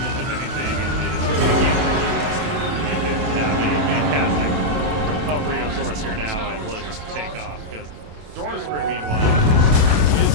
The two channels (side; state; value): left; late; 27 ms